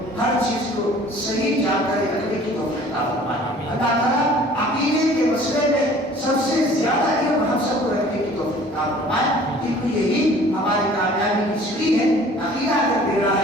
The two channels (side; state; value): both; normal; correlation 0.50